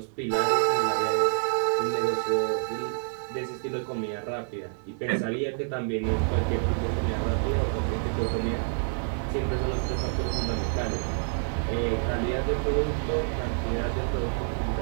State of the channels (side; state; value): left; silent; digital silence